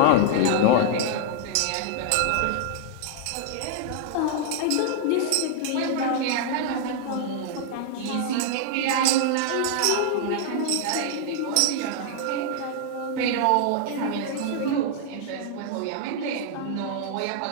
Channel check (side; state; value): both; different; correlation -0.01